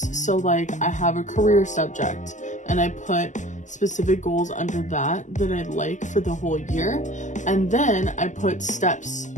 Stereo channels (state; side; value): late; right; 0.36 ms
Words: So like I have a career subject and I put specific goals under that I'd like for the whole year, and then I put steps